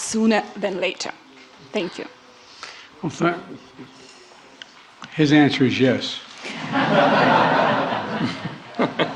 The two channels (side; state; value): both; identical; correlation 1.00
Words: than later? Thank you. Well, his answer is yes.